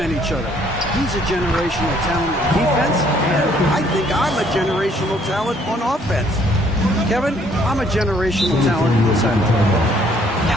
each other. He's a generational talent on defense, and I think I'm a generational talent on offense. Kevin, I'm a generational talent in this end.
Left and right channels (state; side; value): normal; both; correlation 0.63